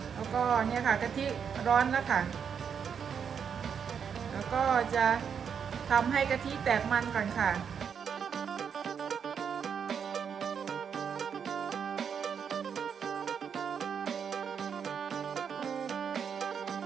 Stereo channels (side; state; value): left; quieter; 7.2 dB